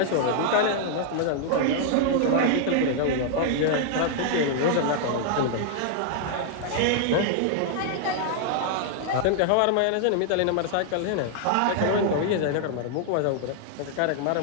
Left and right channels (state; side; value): different; both; correlation -0.01